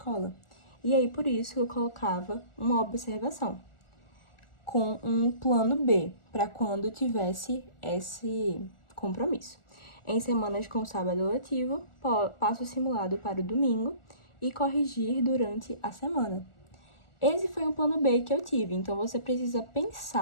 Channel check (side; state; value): right; late; 1.4 ms